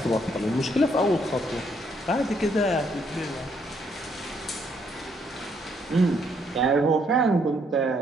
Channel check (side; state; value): both; normal; correlation 0.71